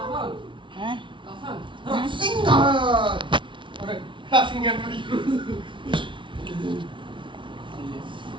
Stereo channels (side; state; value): left; late; 0.24 ms